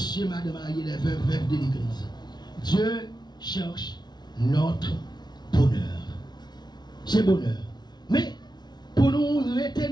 madame, mariés, les veuves de l'église. Dieu cherche notre bonheur. C'est bonheur. Mais pour nous rester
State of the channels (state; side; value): late; right; 0.20 ms